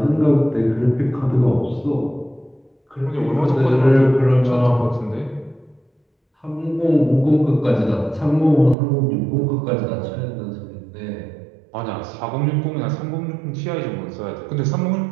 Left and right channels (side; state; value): left; drops out; at 8.8 s